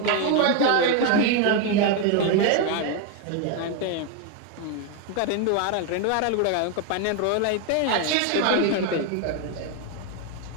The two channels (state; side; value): different; both; correlation 0.01